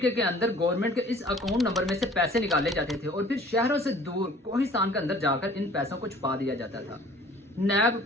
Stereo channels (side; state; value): both; normal; correlation 0.51